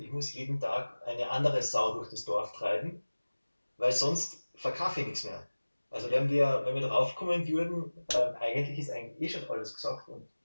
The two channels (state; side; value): inverted; both; correlation -1.00